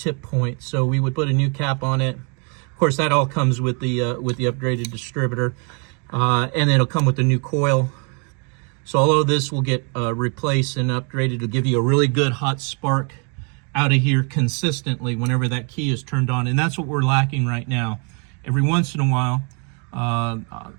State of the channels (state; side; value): quieter; left; 36.4 dB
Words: point. So we would put a new cap on it. Of course, that all comes with the upgraded distributor, and it'll come with the new coil. So all of this will get replaced and upgraded to give you a really good hot spark out of here consistently whenever that key is turned on. And that's what we're lacking right now. Every once in a while,